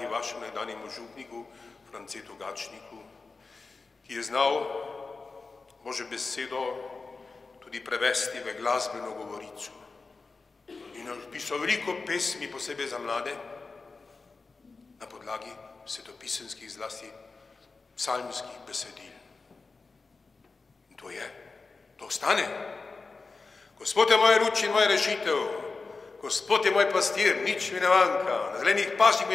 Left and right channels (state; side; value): quieter; right; 4.1 dB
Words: vašemu nekdanjemu župniku, Francetu Gačniku, ki je znal Božjo besedo tudi prevesti v glasbeno govorico. In napisal veliko pesmi, posebej za mlade, na podlagi svetopisemskih, zlasti psalmskih besedil. In to ostane. Gospod je moja luč in moja rešitev, Gospod je moj pastir, nič mi ne manjka, na zelenih pasjih